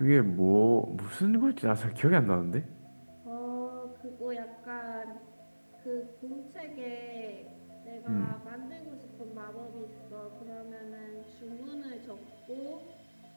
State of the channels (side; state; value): both; inverted; correlation -1.00